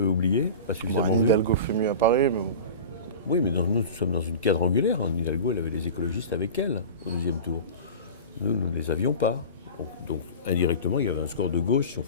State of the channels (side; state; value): both; inverted; correlation -0.33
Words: oublié, pas suffisamment vu. Hidalgo fait mieux à Paris, mais... Oui, mais nous sommes dans une quadrangulaire. Hidalgo, elle avait les écologistes avec elle au deuxième tour. Nous ne les avions pas. Donc, indirectement, il y avait un score de gauche, si on